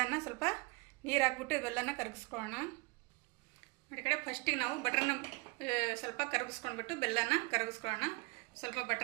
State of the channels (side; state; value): left; quieter; 27.3 dB